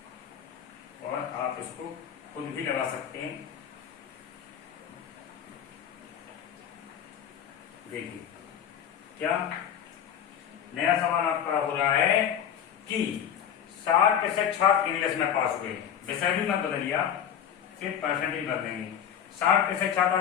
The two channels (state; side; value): quieter; right; 9.1 dB